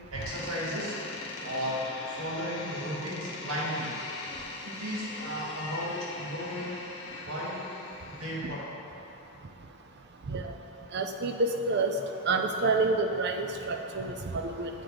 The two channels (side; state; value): both; normal; correlation 0.01